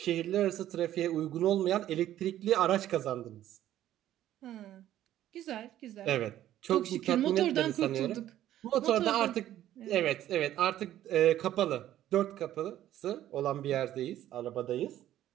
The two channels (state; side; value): quieter; left; 12.7 dB